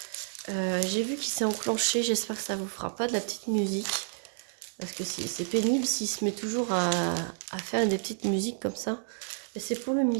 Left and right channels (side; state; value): left; silent; digital silence